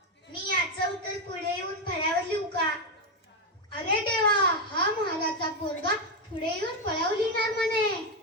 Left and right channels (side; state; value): both; normal; correlation 0.06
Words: मी याचं उत्तर पुढे येऊन फळ्यावर लिहू का? अरे देवा, हा महाराजचा पोरगा पुढे येऊन फळावर लिहिणार म्हणे.